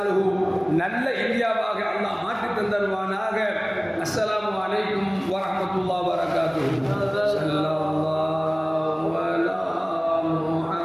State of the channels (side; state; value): both; identical; correlation 1.00